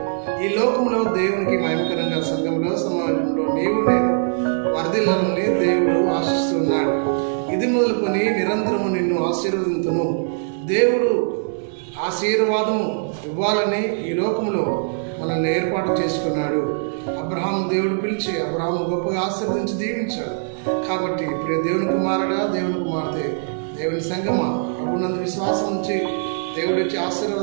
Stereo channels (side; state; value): left; silent; 64 dB below the other